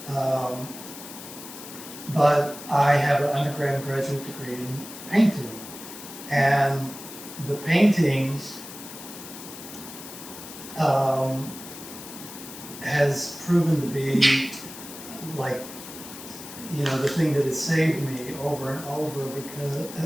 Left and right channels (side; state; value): left; noise; hiss, 13 dB below the sound